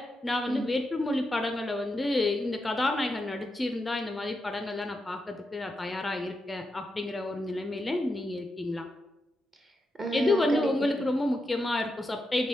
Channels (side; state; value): both; normal; correlation 0.86